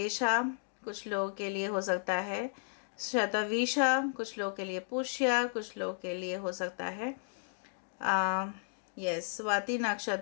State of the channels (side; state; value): right; silent; digital silence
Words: कुछ लोग के लिए हो सकता है शतविशा, कुछ लोग के लिए पुष्या, कुछ लोग के लिए हो सकता है स्वाति